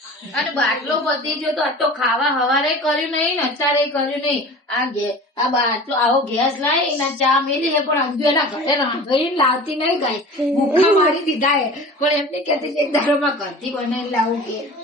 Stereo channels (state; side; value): normal; both; correlation 0.39